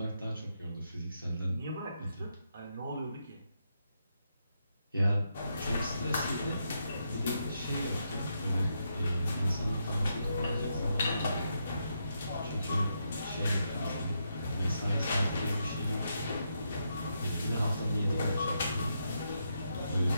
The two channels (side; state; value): both; inverted; correlation -0.81